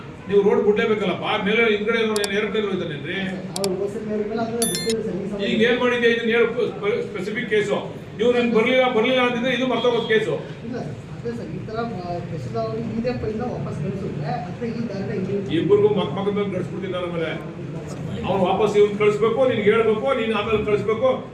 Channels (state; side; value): identical; both; correlation 1.00